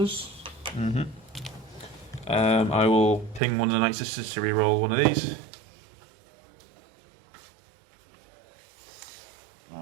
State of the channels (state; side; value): drops out; left; at 3.4 s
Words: I will ping one of the Night Sisters to reroll one of these.